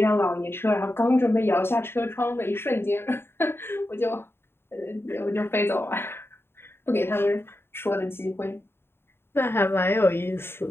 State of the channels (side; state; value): right; late; 0.11 ms